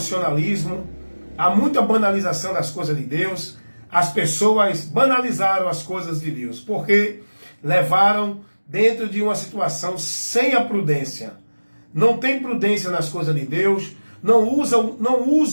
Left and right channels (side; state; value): both; inverted; correlation -1.00